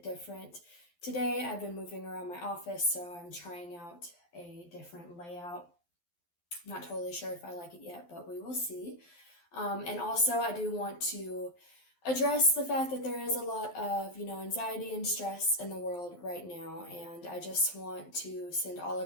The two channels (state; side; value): late; right; 12 ms